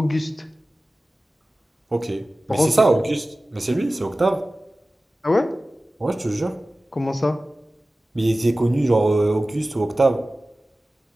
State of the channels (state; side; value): normal; both; correlation 0.96